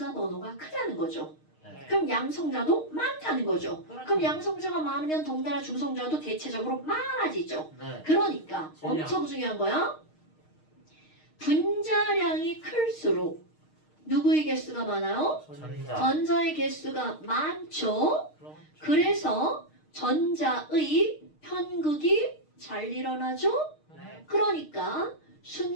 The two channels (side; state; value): right; late; 6.5 ms